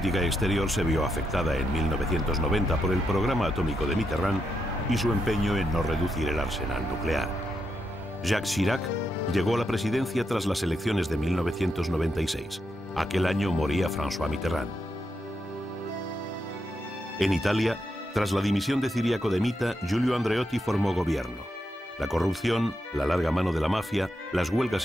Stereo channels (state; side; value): normal; both; correlation 0.83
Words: exterior se vio afectada en 1990 por el programa atómico de Mitterrand y su empeño en no reducir el arsenal nuclear. Jacques Chirac llegó a la presidencia tras las elecciones de 1996. Aquel año moría François Mitterrand. En Italia, tras la dimisión de Ciriaco de Mita, Giulio Andreotti formó gobierno. La corrupción, la larga mano de la mafia, las